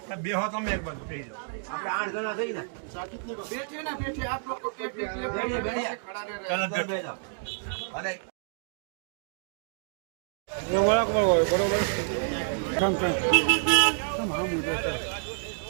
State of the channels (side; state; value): left; silent; digital silence